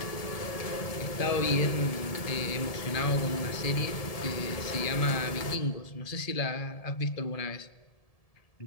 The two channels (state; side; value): late; right; 1.7 ms